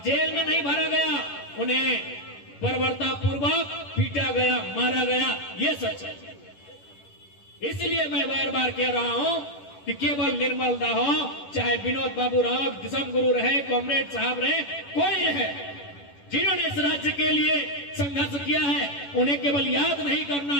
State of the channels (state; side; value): late; right; 11 ms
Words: में नहीं भरा गया, उन्हें बर्बरतापूर्वक पीटा गया, मारा गया। ये सच है। इसलिए मैं बार बार कह रहा हूं कि केवल निर्मल दा हो, चाहे विनोद बाबू रहो, दिसम गुरु रहे, कॉमरेड साहब रहे, कोई रहे, जिन्होंने इस राज्य के लिए संघर्ष किया है, उन्हें केवल याद नहीं करना